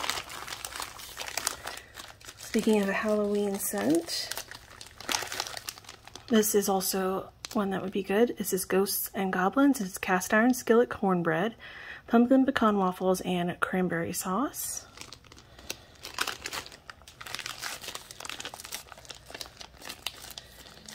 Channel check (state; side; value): identical; both; correlation 1.00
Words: Speaking of a Halloween scent, this is also one that would be good. This is Ghosts and Goblins. It's cast iron skillet cornbread, pumpkin pecan waffles, and cranberry sauce.